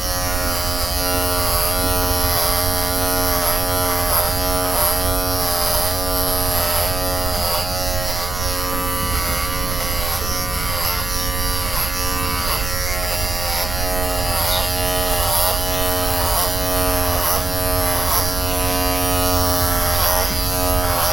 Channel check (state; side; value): noise; right; rumble, 6 dB below the sound